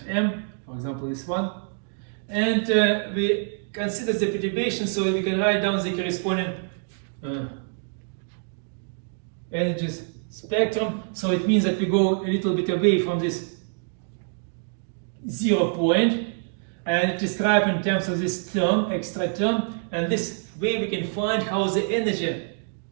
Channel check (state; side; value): silent; left; 60 dB below the other